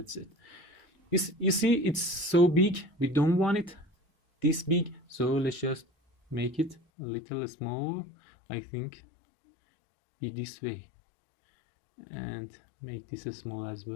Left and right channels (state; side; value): drops out; right; at 6.8 s